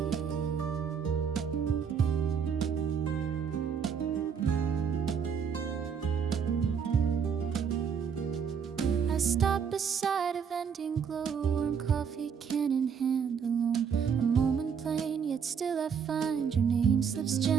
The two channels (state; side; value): quieter; left; 7.0 dB